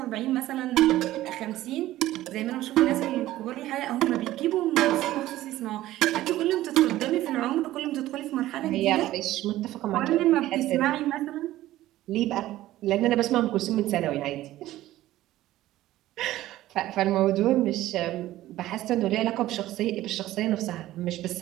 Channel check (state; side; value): quieter; left; 15.1 dB